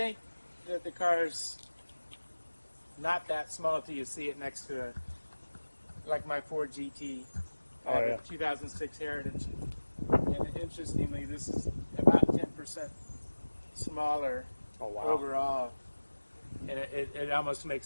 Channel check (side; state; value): both; inverted; correlation -1.00